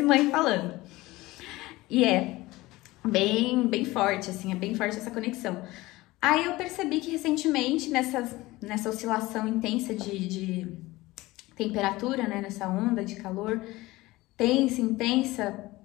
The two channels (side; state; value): right; quieter; 19.5 dB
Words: mãe falando. E é bem forte, assim, é bem forte essa conexão. Aí eu percebi que recentemente, nessa oscilação intensa de temperatura, né, nessa onda de calor, intensa,